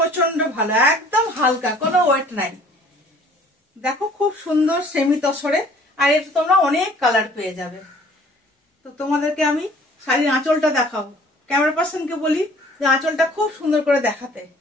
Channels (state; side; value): normal; both; correlation 0.53